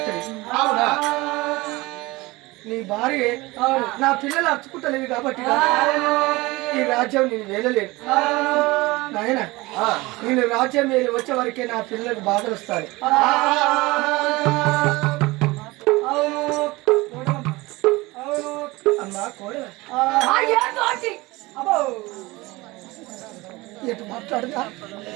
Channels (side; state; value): left; quieter; 21.7 dB